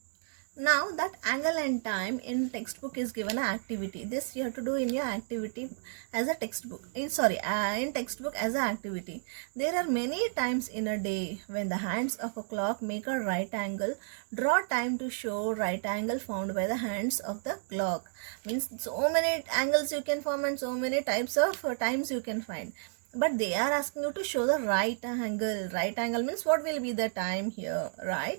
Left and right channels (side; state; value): left; silent; digital silence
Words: Now, that angle and time in textbook is given an activity. This you have to do in your activity as a textbook. In textbook as an activity. There are many times in a day when the hands of a clock make a right angle. Draw time to show right angle found by the hands of the clock. Means so many angles you can form and so many types of times you can find. But they are asking you to show the right angle. Right angle means what will be the time here,